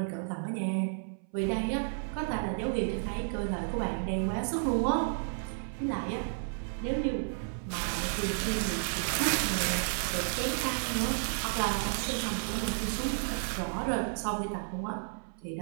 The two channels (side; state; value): left; silent; 56 dB below the other